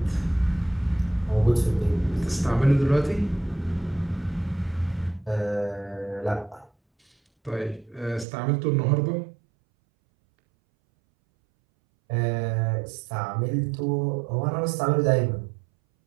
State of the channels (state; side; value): drops out; left; at 8.2 s